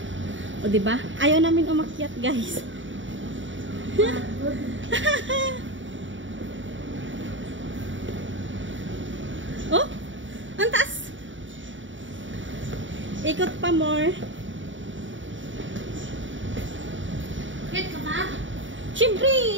O, diba? Ayaw namin umakyat, guys. Oh, ang taas. Ikot pa more. Get ka ba?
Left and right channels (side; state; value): left; late; 0.55 ms